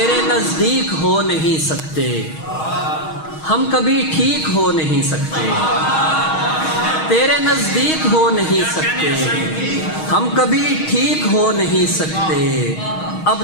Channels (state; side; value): late; right; 6.4 ms